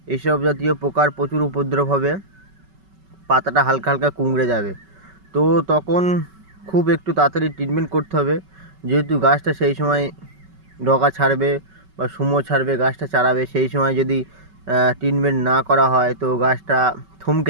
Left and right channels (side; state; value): left; late; 5.3 ms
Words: এইসব জাতীয় পোকার প্রচুর উপদ্রব হবে, পাতাটা হালকা হালকা কুঁকড়ে যাবে। তো তখন খুব একটু তাড়াতাড়ি ট্রিটমেন্ট করতে হবে, যেহেতু গাছটা সেই সময় ডগা ছাড়বে বা সুমো ছাড়বে, গাছটা চারাবে। সেই সময় যদি ট্রিটমেন্ট না করা হয় তো গাছটা থমকে